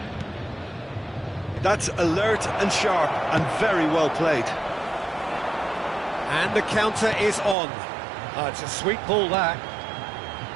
That's alert and sharp and very well played. And the counter is on. Oh, it's a sweet ball, that.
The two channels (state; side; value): drops out; left; at 7.6 s